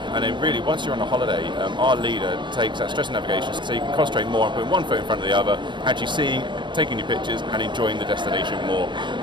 and then really once you're on a holiday, our leader takes that stress and navigation so you can concentrate more on putting one foot in front of the other, actually seeing, taking your pictures and enjoying the destination more.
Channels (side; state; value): left; late; 0.22 ms